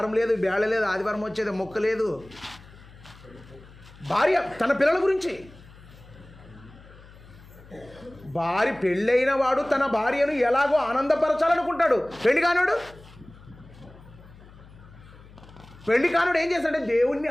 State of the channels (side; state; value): left; noise; hum, 21 dB below the sound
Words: లేదు, బేళ లేదు, ఆదివారం వచ్చేది మొక్క లేదు. భార్య తన పిల్లల గురించి. భార్య పెళ్ళైన వాడు తన భార్యను ఎలాగో ఆనందపరచాలనుకుంటాడు. పెళ్లి కానుడు ఏం చేస్తాడంటే దేవుణ్ణి